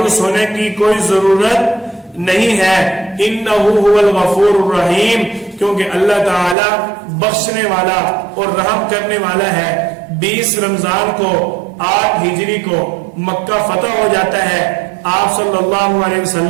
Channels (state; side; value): drops out; left; at 6.6 s